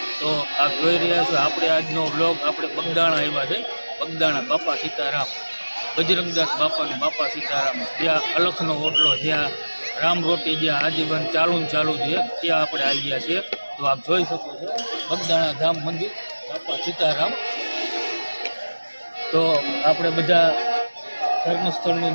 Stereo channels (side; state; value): both; inverted; correlation -1.00